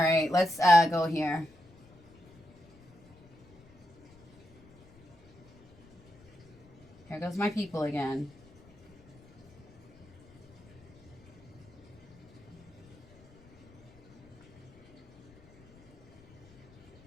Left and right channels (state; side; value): noise; left; rumble, 25 dB below the sound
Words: let's go here. Here goes my people again.